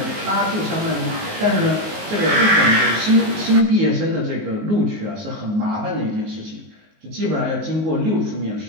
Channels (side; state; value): left; late; 19 ms